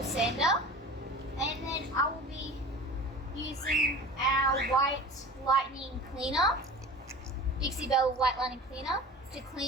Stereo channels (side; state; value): both; normal; correlation 0.38